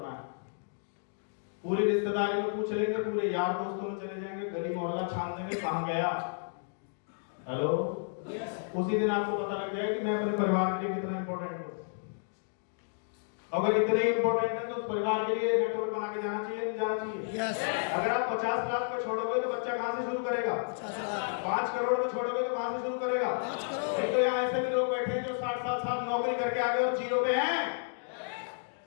है। पूरी रिश्तेदारी में पूछ लेंगे, पूरे यार दोस्तों में चले जाएंगे, गली मोहल्ला छान देंगे कहां गया। हेलो। उसी दिन आपको पता लग जाएगा कि मैं अपने परिवार के लिए कितना इंपॉर्टेंट हूं। अगर इतने इंपॉर्टेंट है तो उस परिवार के लिए नेटवर्क बना के जाना चाहिए, नहीं जाना चाहिए? yes. अगर आप 50 लाख पे छोड़ोगे तो बच्चा कहां से शुरू करेगा? 5 करोड़ में छोड़ोगे तो कहां से शुरू करेगा? 5 करोड़। नहीं तो यहाँ ऐसे भी लोग बैठे हैं जो 60 साल नौकरी करके आ गए और 0 पे हैं।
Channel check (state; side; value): silent; right; digital silence